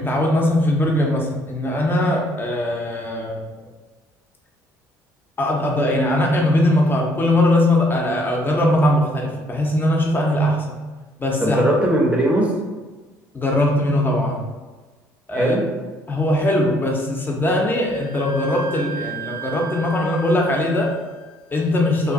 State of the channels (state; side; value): normal; both; correlation 0.66